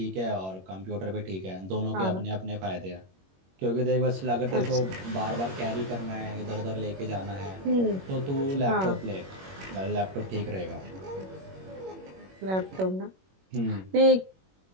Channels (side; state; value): left; late; 21 ms